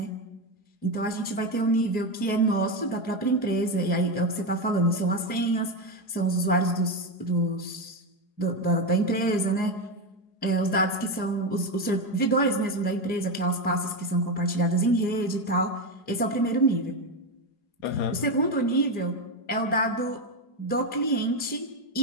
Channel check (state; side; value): late; right; 4.8 ms